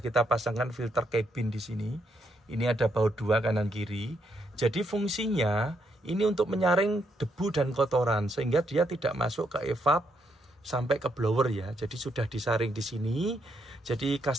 pasangkan filter cabin di sini. Ini ada baut dua kanan kiri. Jadi fungsinya ini untuk menyaring debu dan kotoran sehingga dia tidak masuk ke evap sampai ke blower ya. Jadi sudah disaring di sini. Jadi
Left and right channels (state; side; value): normal; both; correlation 0.76